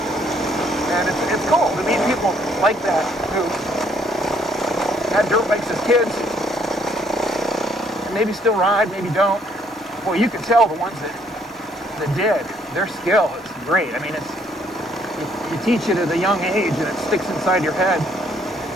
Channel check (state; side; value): normal; both; correlation 0.66